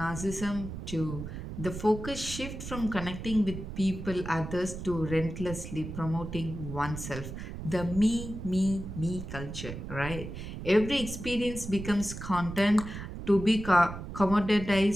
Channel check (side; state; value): right; noise; rumble, 9 dB below the sound